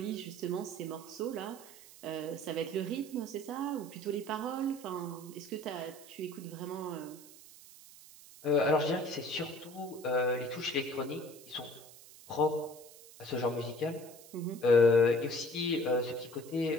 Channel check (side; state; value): right; noise; hiss, 19 dB below the sound